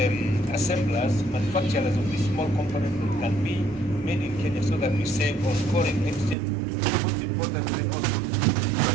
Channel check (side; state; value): left; drops out; at 6.4 s